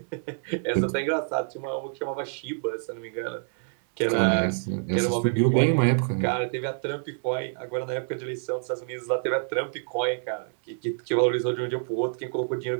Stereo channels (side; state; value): left; silent; 60 dB below the other